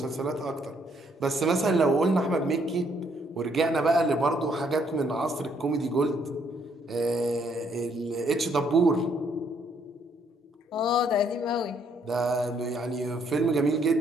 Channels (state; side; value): normal; both; correlation 0.69